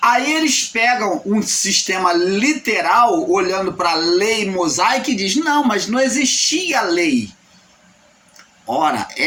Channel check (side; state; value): both; identical; correlation 1.00